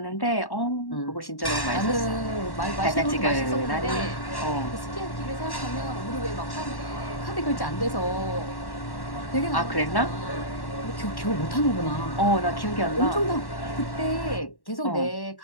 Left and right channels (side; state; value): right; late; 1.1 ms